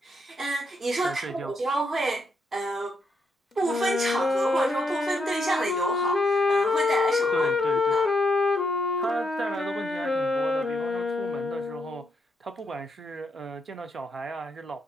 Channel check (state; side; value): normal; both; correlation 0.79